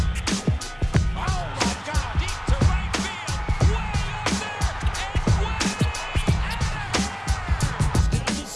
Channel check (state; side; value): identical; both; correlation 1.00